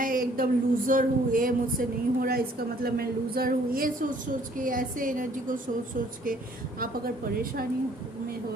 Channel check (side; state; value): both; normal; correlation 0.60